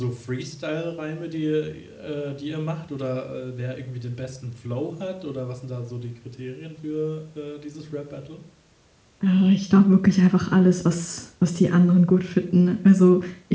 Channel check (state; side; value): identical; both; correlation 1.00